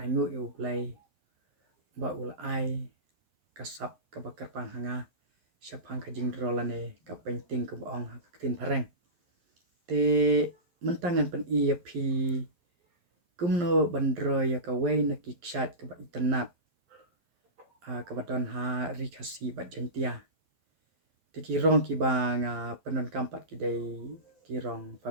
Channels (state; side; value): late; left; 11 ms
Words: yu play ba ulai kasap ka bakar pang hanga syapang ka jingdro lane ka painting ka baong ka tin pareng te mentangan pen ia phi kumno bandro ya ka wei na kiksat ka ba internet ka badon ha rikasi bat jentia te kirong ki bang penon kampat ki dai kirong